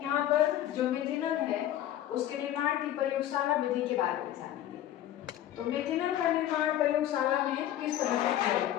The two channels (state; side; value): quieter; right; 12.3 dB